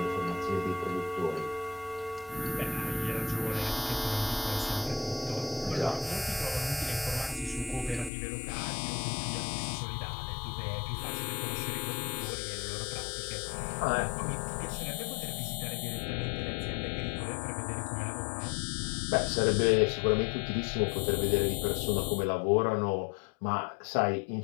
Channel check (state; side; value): drops out; right; at 8.1 s